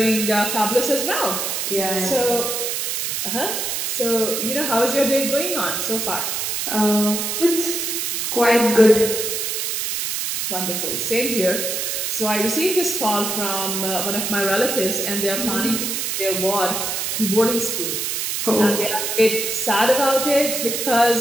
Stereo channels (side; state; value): right; noise; hiss, 1 dB below the sound